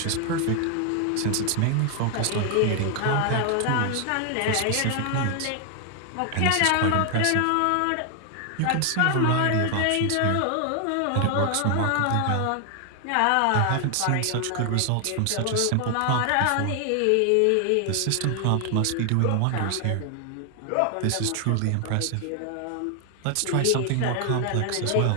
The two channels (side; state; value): both; different; correlation 0.00